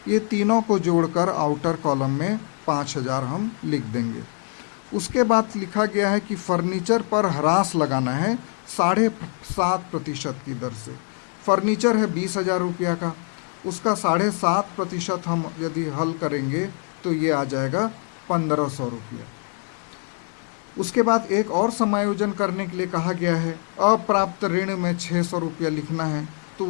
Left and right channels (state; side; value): quieter; right; 37.9 dB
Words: ये तीनों को जोड़कर आउटर कॉलम में 5,000 हम लिख देंगे। उसके बाद लिखा गया है कि फर्नीचर पर ह्रास लगाना है 7.5% की दर से। फर्नीचर है 20,000 रुपया का, उसका 7.5% हम यदि हल करेंगे तो ये आ जाएगा 1,500 रुपया। उसके बाद एक और समायोजन करने के लिए कहा गया है, अप्राप्त ऋण में 600 रुपया लिखना है, तो